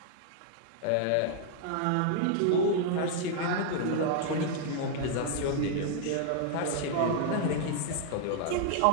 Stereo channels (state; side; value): different; both; correlation -0.01